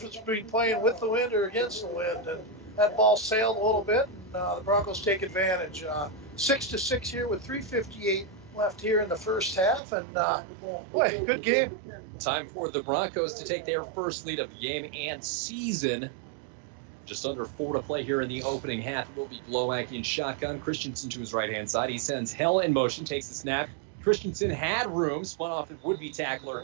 between playing with the wind or against the wind. And that ball sailed a little bit, and the Broncos take advantage. 6-6 here with 3:58 left here in the first half, and boy, good game. Time for the Broncos to take their first lead of the game and season. Just under 4 to play here in the opening half. It will be Glowak in shotgun. Christensen to his right-hand side. He sends Hell in motion, takes the snap. Christensen had room, spun off and would-be tackler.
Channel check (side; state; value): left; drops out; at 9.8 s